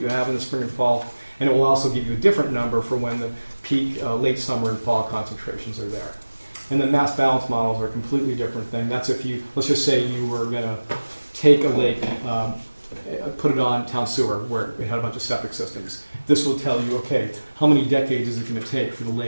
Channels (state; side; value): inverted; both; correlation -1.00